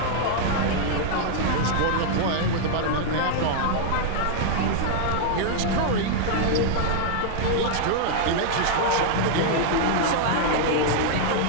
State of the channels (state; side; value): different; both; correlation -0.01